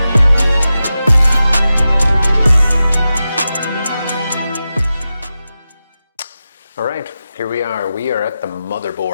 Alright, here we are. We are at the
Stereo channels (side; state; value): both; inverted; correlation -0.92